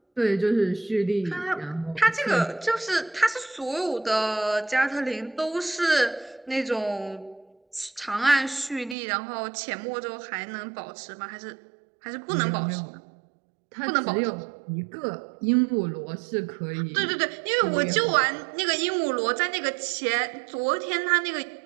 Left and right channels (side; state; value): left; drops out; at 9.0 s